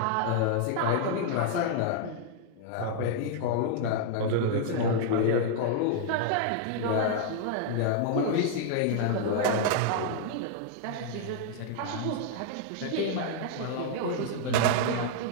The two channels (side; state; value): both; different; correlation -0.01